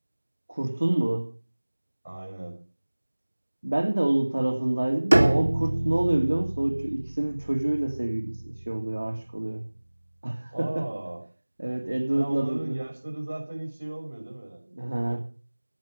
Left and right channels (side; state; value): both; inverted; correlation -1.00